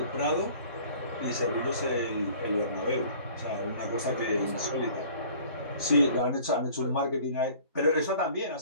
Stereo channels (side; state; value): both; inverted; correlation -0.50